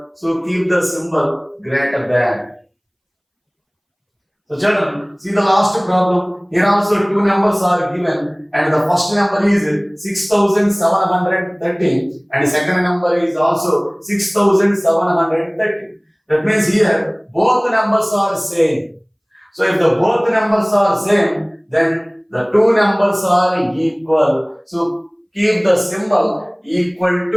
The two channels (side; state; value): both; identical; correlation 1.00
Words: so keep the symbol greater than. So children, see the last problem. Here also 2 numbers are given and the first number is 6730 and the second number is also 6730. That means here both numbers are same. So if the both numbers are same, then the 2 numbers are equal. So keep the symbol equal